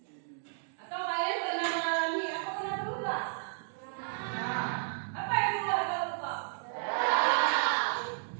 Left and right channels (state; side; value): silent; left; digital silence